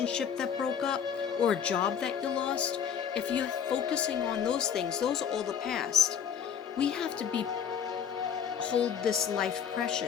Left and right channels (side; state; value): right; quieter; 7.9 dB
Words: that broke up, or a job that you lost, if you're focusing on those things, those are all the past. We have to hold this life